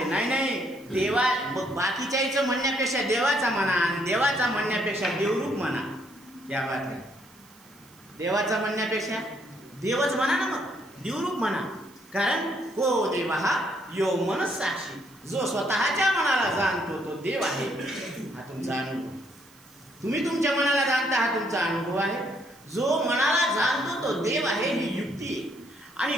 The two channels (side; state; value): right; noise; hiss, 27 dB below the sound